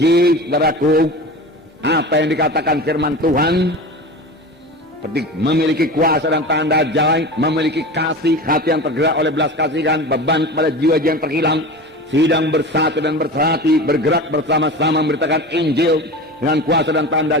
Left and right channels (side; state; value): both; normal; correlation 0.31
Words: saudaraku, apa yang dikatakan firman Tuhan, seperti memiliki kuasa dan tanda ajaib, memiliki kasih, hati yang tergerak oleh belas kasihan, beban kepada jiwa-jiwa yang terhilang, sidang bersatu dan bersehati, bergerak bersama-sama memberitakan Injil dengan kuasa dan tanda